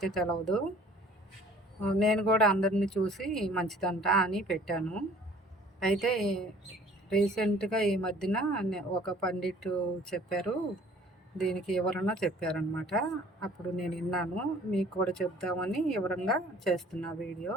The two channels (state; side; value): normal; both; correlation 0.53